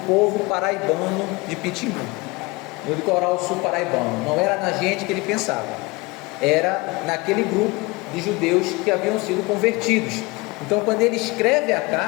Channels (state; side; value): quieter; right; 24.5 dB